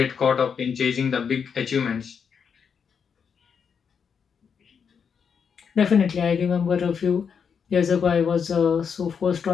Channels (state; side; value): quieter; right; 6.7 dB